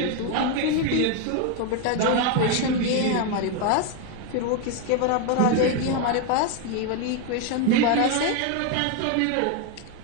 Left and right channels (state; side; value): different; both; correlation 0.01